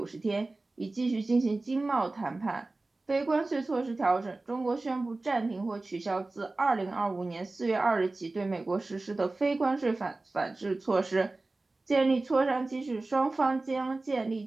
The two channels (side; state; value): left; quieter; 3.2 dB